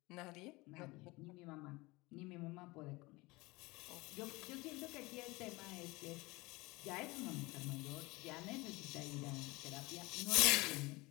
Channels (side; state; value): right; quieter; 22.9 dB